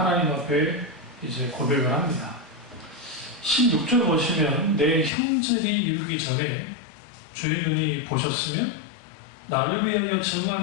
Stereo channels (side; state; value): right; drops out; at 5.1 s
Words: 앞에 이제 고백을 합니다. 16절 보시면 내 형들이 이르기 전에 주의 눈이 보셨으며 나를 위하여